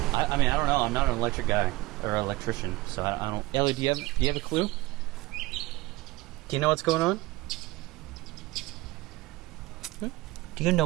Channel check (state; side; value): quieter; left; 20.0 dB